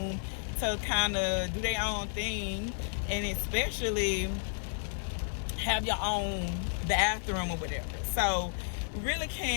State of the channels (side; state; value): right; silent; 55 dB below the other